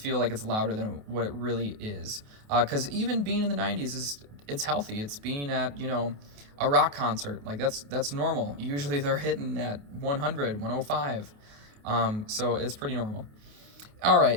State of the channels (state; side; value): late; left; 28 ms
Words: like it's louder than what it really is. Because even being in the 90s it's healthy. It's being at a rock concert, like that's normal. Usually they're hitting at 100, 105. So it's pretty normal. All